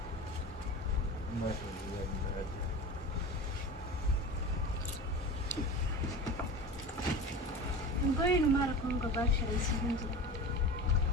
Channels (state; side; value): normal; both; correlation 0.32